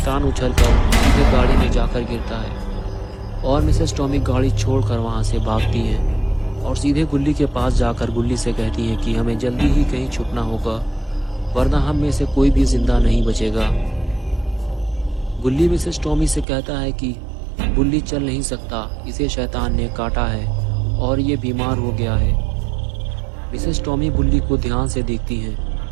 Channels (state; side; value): drops out; left; at 16.4 s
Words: उछलकर सीधे गाड़ी में जाकर गिरता है और मिसेस टॉमी गाड़ी छोड़कर वहां से भागती है और सीधे गुल्ली के पास जाकर गुल्ली से कहती है कि हमें जल्दी ही कहीं छुपना होगा, वरना हम में से कोई भी जिंदा नहीं बचेगा। गुल्ली मिसेस टॉमी से कहता है कि बुल्ली चल नहीं सकता, इसे शैतान ने काटा है और ये बीमार हो गया है। मिसेस टॉमी बुल्ली को ध्यान से देखती हैं